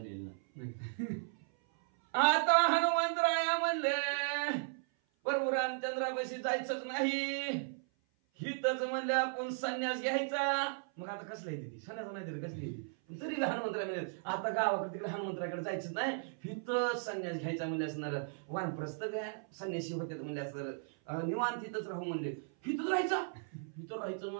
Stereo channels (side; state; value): left; silent; 54 dB below the other